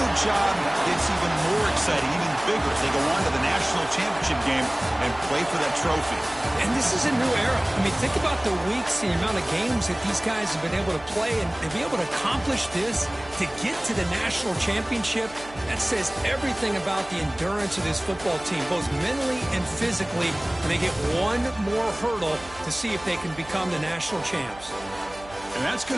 the job gets even more exciting, even bigger as they go on to the national championship game and play for that trophy. And this is a new era. I mean, think about the weeks, the amount of games that these guys have been able to play, and to be able to accomplish this, to get to the national championship, that says everything about the endurance of this football team, both mentally and physically, and they get one more hurdle to see if they can become the national champs. And that's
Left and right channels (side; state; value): right; noise; hum, 20 dB below the sound